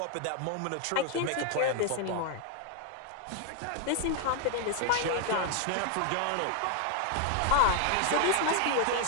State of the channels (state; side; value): different; both; correlation 0.00